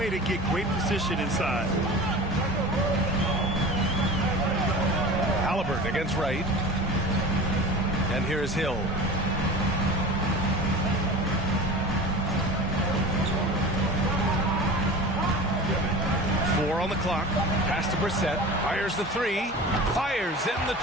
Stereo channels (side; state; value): both; normal; correlation 0.35